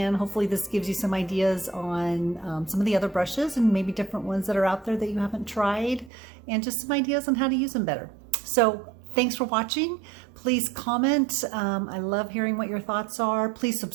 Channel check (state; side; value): drops out; left; at 6.1 s